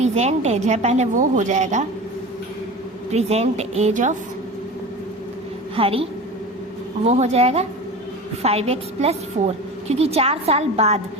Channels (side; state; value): both; normal; correlation 0.32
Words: एज है, पहले वो हो जाएगा प्रेजेंट एज ऑफ हरी, वो हो जाएगा 5x + 4, क्योंकि 4 साल बाद,